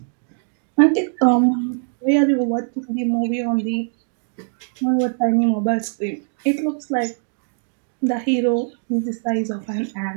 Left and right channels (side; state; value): left; silent; 59 dB below the other